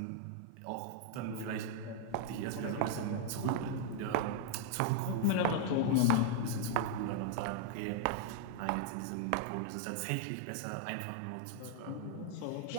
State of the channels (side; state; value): both; different; correlation -0.01